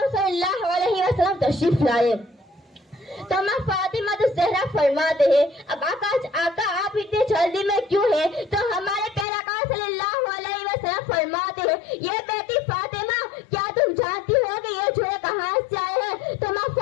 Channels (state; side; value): drops out; right; at 9.2 s